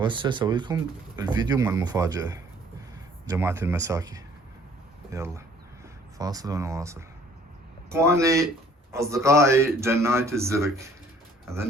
اسوي لكم الفيديو مال المفاجأة جماعة المساكي. يلا فاصل ونواصل. اخواني اصدقائي جناية الزرق،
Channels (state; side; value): normal; both; correlation 0.57